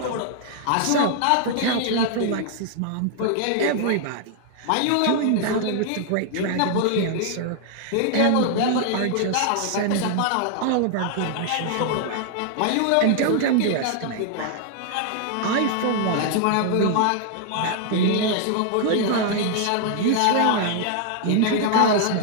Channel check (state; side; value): different; both; correlation 0.00